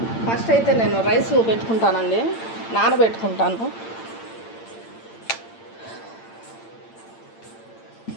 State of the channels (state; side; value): late; right; 8.8 ms